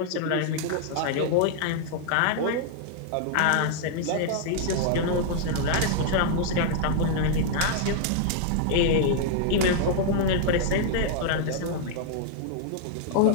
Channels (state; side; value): different; both; correlation -0.01